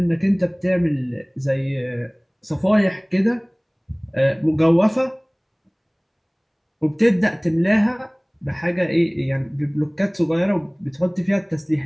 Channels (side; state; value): both; identical; correlation 1.00